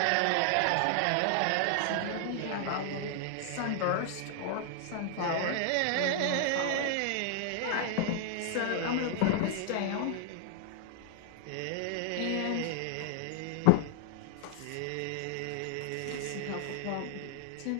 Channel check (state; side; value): different; both; correlation 0.00